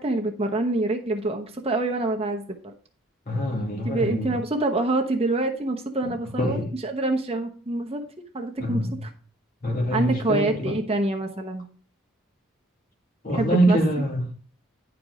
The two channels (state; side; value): normal; both; correlation 0.58